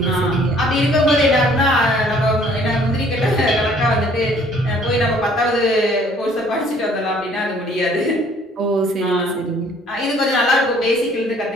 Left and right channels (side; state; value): both; normal; correlation 0.58